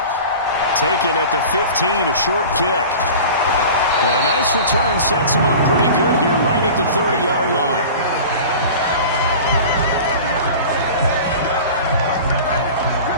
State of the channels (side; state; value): both; inverted; correlation -0.37